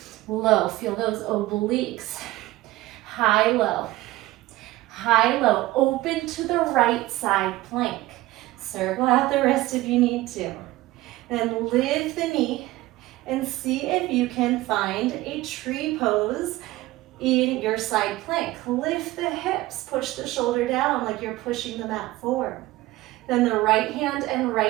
low, feel those obliques. High, low. High, low, open to the right side plank. Circle out the wrist if you need to. Then lift the knee and see if you can find a tree pose in your side plank. Lift the hips, push the shoulder down like you're pushing the mat forward. Then the right hand and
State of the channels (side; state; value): left; quieter; 17.8 dB